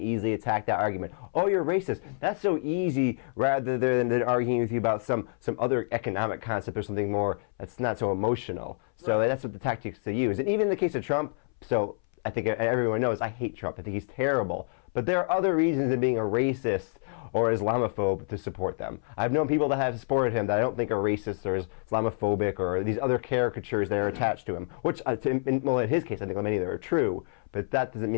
attack that argument. Oh, you're racist. That's so easy, rather than arguing with you about some other economic concept or something more that's not so emotional. So Right. That's what the tactics they use. And even in the case of Trump, so I think everyone knows I hate Trump. I think he's terrible. But there are other reasons than being a racist or Islamophobe to support them. I've known people that have supported him that I don't think are racist or Islamophobic or these other caricatures that are attached to him, which, in his case, I think many of them are true, but that doesn't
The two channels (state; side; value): silent; right; 59 dB below the other